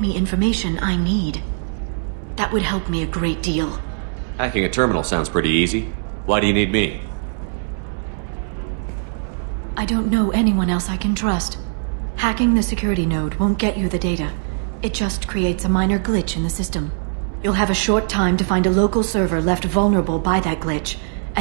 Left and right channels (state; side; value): silent; left; 65 dB below the other